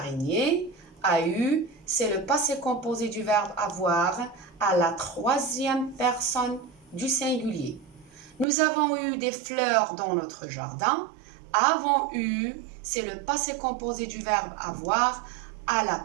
A eu, c'est le passé composé du verbe avoir à la troisième personne du singulier. Nous avons eu des fleurs dans notre jardin. Avons eu, c'est le passé composé du verbe avoir à la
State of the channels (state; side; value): drops out; left; at 8.5 s